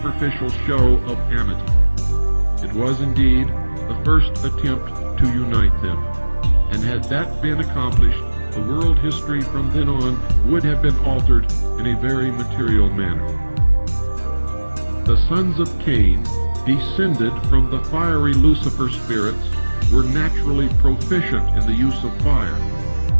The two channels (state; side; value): inverted; both; correlation -1.00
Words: show of amity. It was indeed the first attempt to unite them, and had that been accomplished, the world history from then on would have been altered in a very material manner. The sons of Cain, descended from the fiery Lucifer spirits, were naturally proficient in the use of fire.